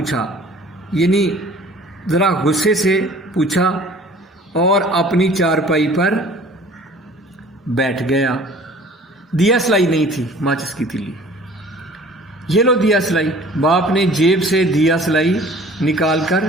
یعنی ذرا غصے سے پوچھا اور اپنی چارپائی پر بیٹھ گیا. دیا سلائی نہیں تھی، ماچس کی تیلی. یہ لو دیا سلائی. باپ نے جیب سے دیا سلائی نکال کر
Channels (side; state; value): both; normal; correlation 0.49